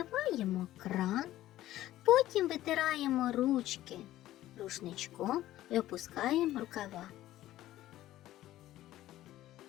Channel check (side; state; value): right; quieter; 14.4 dB